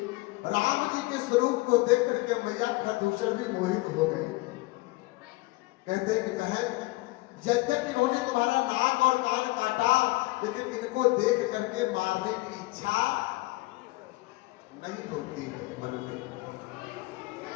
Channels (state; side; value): quieter; right; 22.1 dB